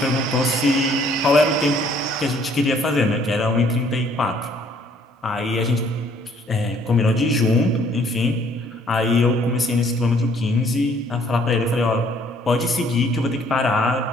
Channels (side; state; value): both; normal; correlation 0.61